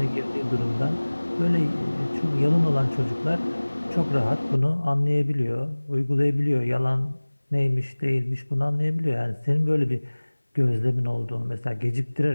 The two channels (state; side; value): inverted; both; correlation -1.00